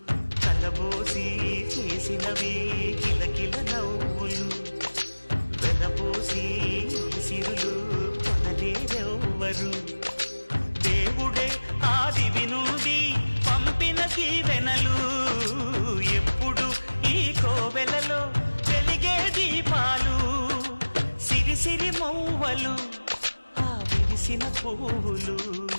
కలబోసి చేసినవి కిలకిల నవ్వులు వెలబోసి సిరులు కొనలేరెవ్వరు దేవుడే ఆదివి నుండి పంపిన దీవెనలు ఎప్పుడు ఈ కోవెలలో వెలిగే దీపాలు సిరి సిరి మౌవలు ఆ విరిసిన పువ్వులు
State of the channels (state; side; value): inverted; both; correlation -1.00